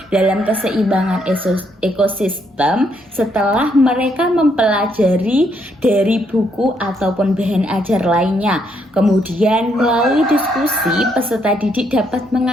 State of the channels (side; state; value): both; normal; correlation 0.74